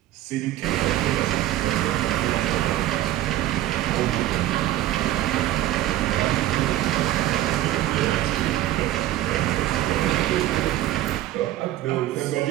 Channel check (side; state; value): left; quieter; 14.2 dB